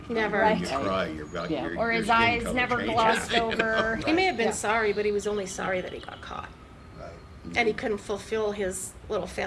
Never. When you Right. cry, your, Yeah. your, Or your his skin eyes color never changes, glossed you know? over. He may have been Yeah. sorry, but he was only sorry that he got caught. And he couldn't fulfill his little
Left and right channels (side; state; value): both; identical; correlation 1.00